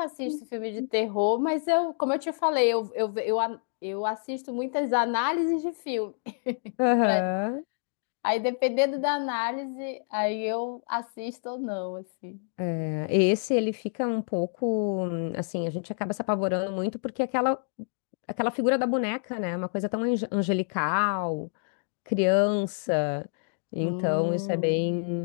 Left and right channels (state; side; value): silent; right; digital silence